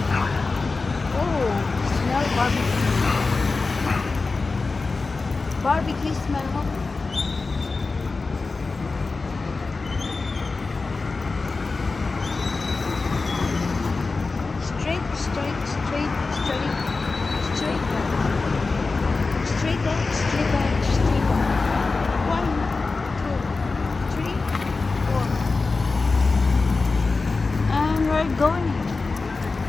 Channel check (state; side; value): quieter; right; 3.9 dB